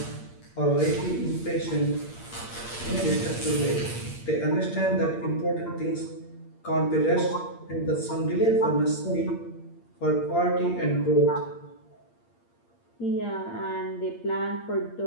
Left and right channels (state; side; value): late; right; 8.6 ms